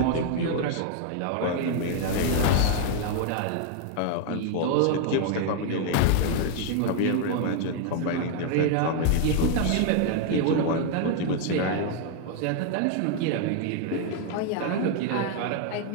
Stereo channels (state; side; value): different; both; correlation 0.00